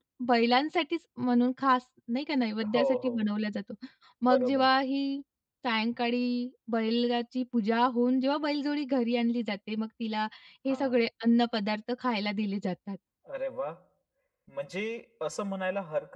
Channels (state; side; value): identical; both; correlation 1.00